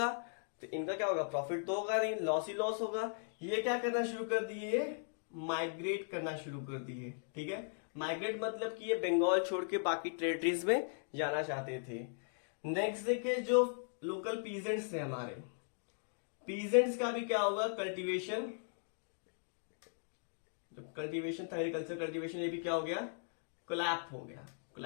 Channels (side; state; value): right; silent; digital silence